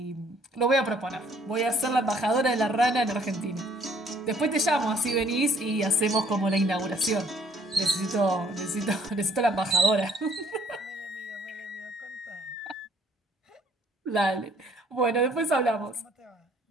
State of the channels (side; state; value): both; normal; correlation 0.62